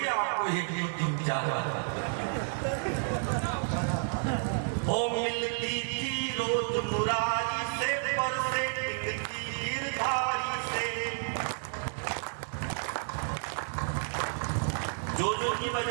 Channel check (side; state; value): left; silent; digital silence